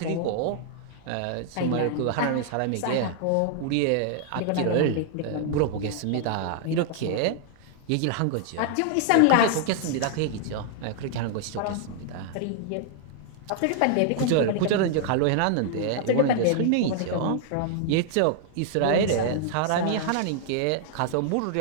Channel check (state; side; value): different; both; correlation -0.01